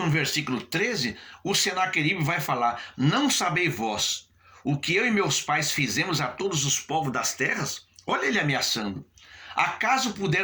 versículo 13, o Senaqueribe vai falar: não sabeis vós o que eu e meus pais fizemos a todos os povos das terras? Olha ele ameaçando. Acaso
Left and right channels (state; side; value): identical; both; correlation 1.00